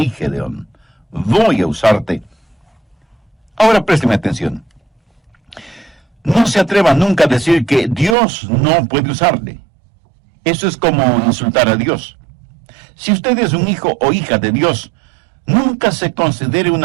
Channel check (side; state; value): left; drops out; at 8.2 s